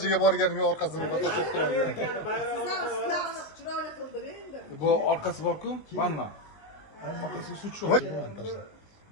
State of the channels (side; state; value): right; late; 19 ms